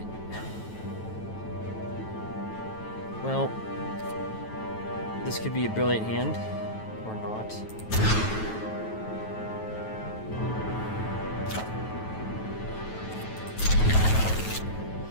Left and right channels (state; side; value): late; right; 9.2 ms